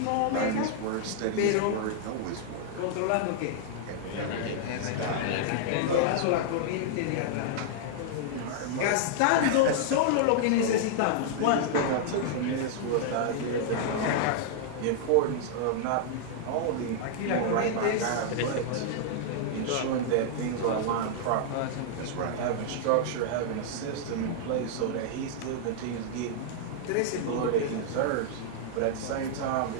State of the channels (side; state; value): both; different; correlation -0.01